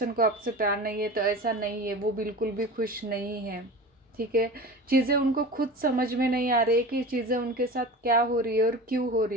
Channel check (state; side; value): normal; both; correlation 0.33